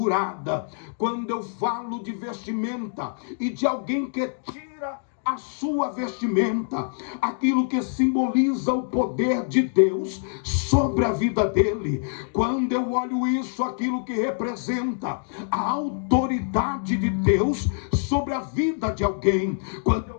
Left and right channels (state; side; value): silent; right; digital silence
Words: Quando eu falo de vestimenta e de alguém que tira a sua vestimenta, aquilo que simboliza o poder de Deus sobre a vida dele. Quando eu olho isso, aquilo que representa a autoridade de Deus sobre a vida de alguém. Quando